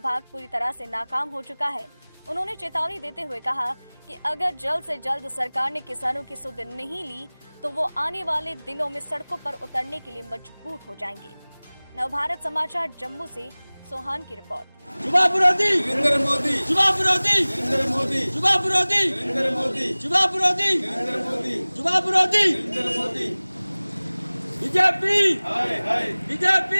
पूरी तरह से नाकाम हो चुका है। उन्होंने चेतावनी देते हुए कहा कि अगर जल्द से जल्द सरकार ने किसानों की सुध नहीं ली तो वो आने वाले दिनों में सड़कों पर उतरने के लिए मजबूर हो जाएंगे। नवभारत समाचार जम्मू से सोहान की रिपोर्ट। युवा विरोधी नरेंद्र मोदी, युवा विरोधी नरेंद्र मोदी, युवा विरोधी नरेंद्र मोदी, युवा विरोधी नरेंद्र मोदी, युवा विरोधी नरेंद्र मोदी। बीजेपी हाय हाय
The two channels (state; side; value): inverted; both; correlation -1.00